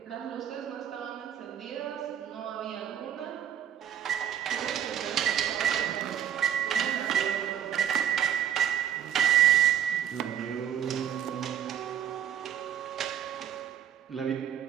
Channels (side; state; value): left; quieter; 9.9 dB